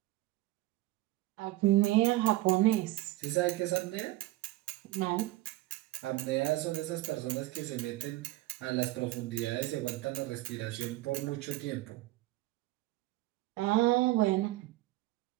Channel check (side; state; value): left; quieter; 17.8 dB